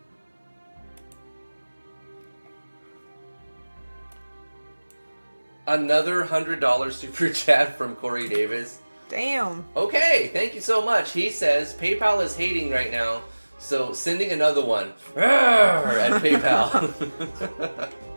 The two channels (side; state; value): both; inverted; correlation -1.00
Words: Another $100 super chat from Corey Davis. Damn. Okay, thank you so much. He says PayPal is hating right now, so sending another one at PayPal.